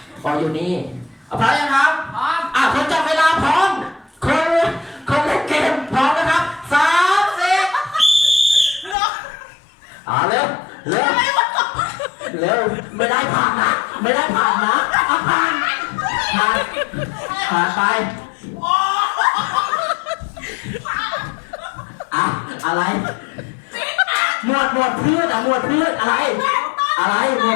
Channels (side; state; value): right; drops out; at 9.0 s